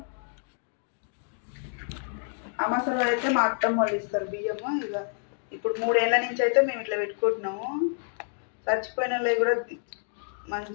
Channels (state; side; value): silent; right; digital silence